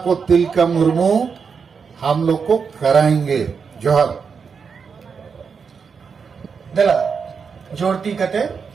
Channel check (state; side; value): quieter; left; 5.9 dB